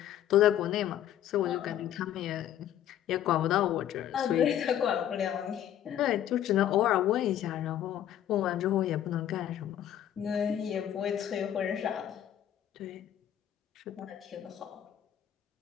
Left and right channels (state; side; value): quieter; right; 10.9 dB